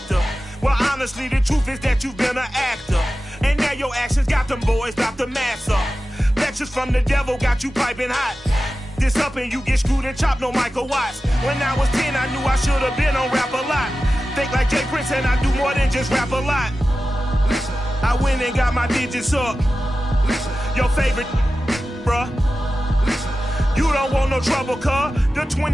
Well, honestly, the truth is that you've been an actor. And now your actions got them boys about to mass up. Lectures from the devil got you piping hot. This up and you get screwed and chopped, no Michael Watts. When I was 10, I knew I should have been on rap a lot. Think like Jay Prince and I do more than just rap a lot. Listen, I went and got my digits up. Listen, your favorite, bruh. Listen, you don't want no trouble, cuz. The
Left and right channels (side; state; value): both; normal; correlation 0.94